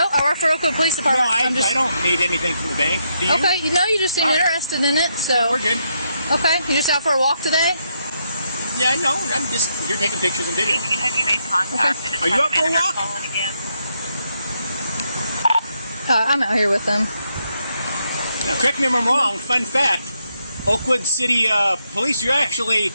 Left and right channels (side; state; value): both; inverted; correlation -0.79